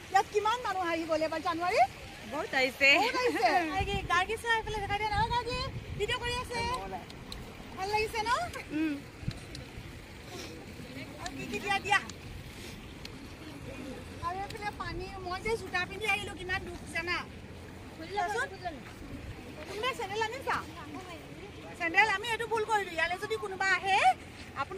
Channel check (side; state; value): both; identical; correlation 1.00